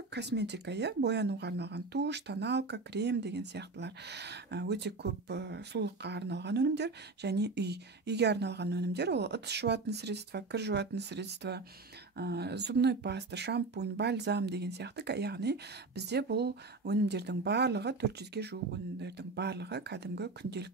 косметика, боянуға арналған туш, тоналка, крем деген сияқтылар өте көп сұлулыққа арналған өнімдер. Және үйге арналған өнімдер, ол ыдыс жуатын средства, кір жуатын средства, зубной паста, шампунь, бальзам деген сияқты. Яғни бізде бұл өнімдердің барлығы, 400-ге жуық өнімдердің барлығы кәдімгі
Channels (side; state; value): left; quieter; 3.7 dB